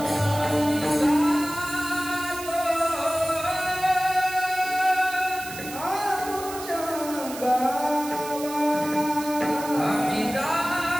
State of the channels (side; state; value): right; noise; hiss, 12 dB below the sound